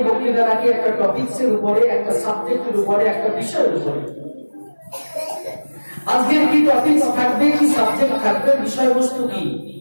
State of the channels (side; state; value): both; inverted; correlation -1.00